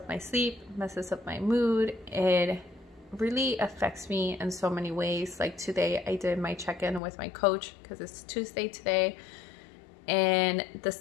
my sleep, messes up my mood. It really affects me in so many ways. Like today I did my check-in with my coach because it's Tuesday today, and the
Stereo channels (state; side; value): drops out; right; at 7.0 s